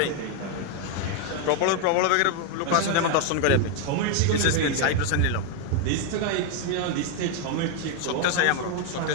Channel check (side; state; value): both; different; correlation 0.01